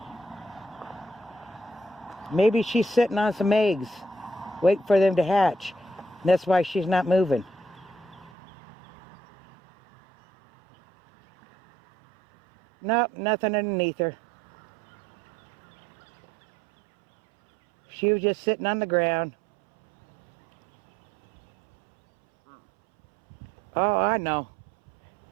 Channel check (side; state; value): left; drops out; at 8.3 s